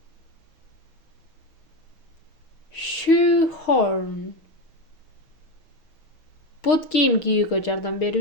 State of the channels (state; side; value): late; right; 6.6 ms